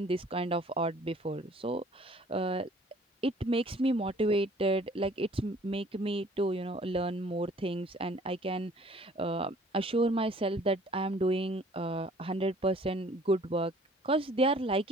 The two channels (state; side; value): normal; both; correlation 0.55